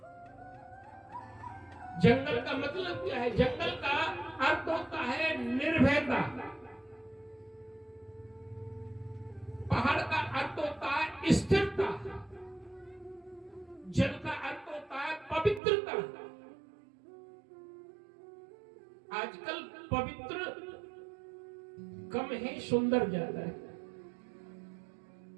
जंगल का मतलब क्या है, जंगल का अर्थ होता है निर्भयता, पहाड़ का अर्थ होता है स्थिरता, जल का अर्थ होता है पवित्रता। आजकल पवित्र कम है, सुंदर ज्यादा है।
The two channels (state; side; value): drops out; left; at 15.6 s